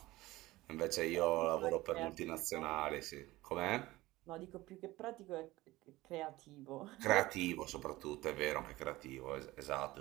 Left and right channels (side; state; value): left; quieter; 18.5 dB